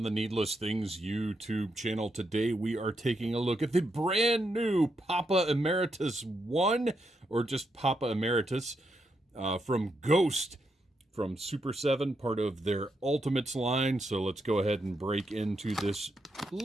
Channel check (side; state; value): both; normal; correlation 0.81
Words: the Needless Things YouTube channel. Today we are taking a look at the brand new Papa Emeritus I, or just Papa Emeritus, from Ghost, from Super 7, part of their Ultimates line. So let's go ahead and break into this